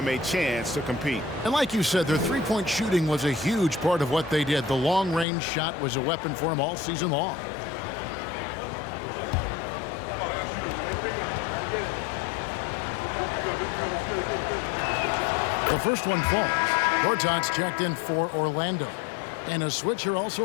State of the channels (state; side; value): drops out; right; at 5.2 s